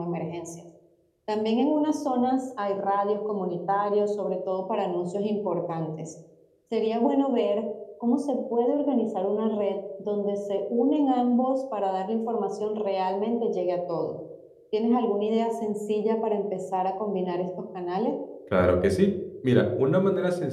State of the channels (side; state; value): both; identical; correlation 1.00